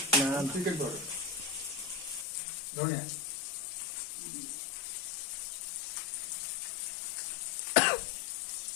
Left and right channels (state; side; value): drops out; right; at 2.2 s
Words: না চিকেন পাউডার ধনিয়া